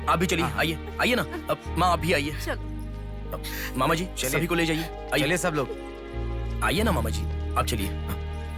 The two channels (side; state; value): both; identical; correlation 1.00